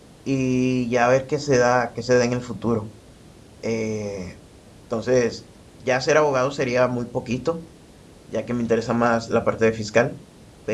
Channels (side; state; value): both; identical; correlation 1.00